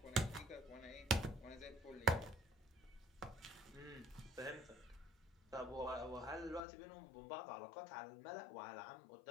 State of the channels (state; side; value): drops out; right; at 6.6 s